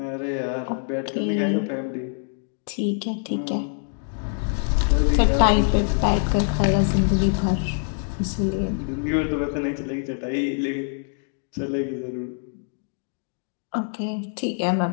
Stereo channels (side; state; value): right; silent; 60 dB below the other